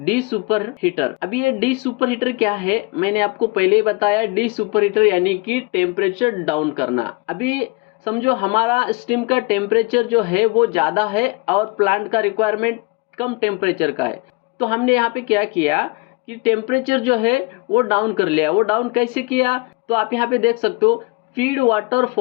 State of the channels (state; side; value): quieter; right; 26.9 dB